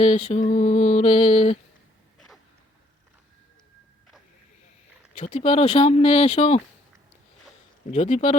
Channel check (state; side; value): normal; both; correlation 0.66